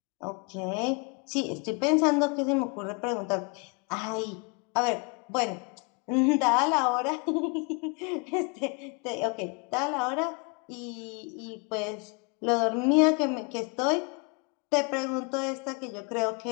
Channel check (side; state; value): right; quieter; 33.1 dB